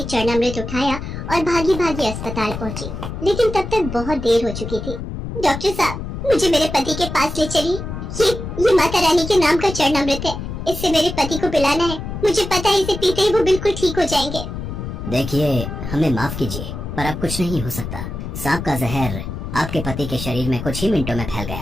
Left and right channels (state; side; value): noise; left; rumble, 7 dB below the sound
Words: चरणामृत उठाया और भागी भागी अस्पताल पहुंची। लेकिन तब तक बहुत देर हो चुकी थी। डॉक्टर साहब, मुझे मेरे पति के पास ले चलिए। ये माता रानी के नाम का चरणामृत है। इससे मेरे पति को पिलाना है। मुझे पता है इसे पीते ही वो बिल्कुल ठीक हो जाएंगे। देखिए, हमें माफ कीजिए, पर अब कुछ नहीं हो सकता। सांप का जहर आपके पति के शरीर में कुछ ही मिनटों में फैल